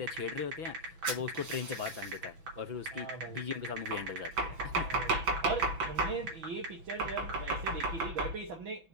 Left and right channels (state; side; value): late; left; 6.0 ms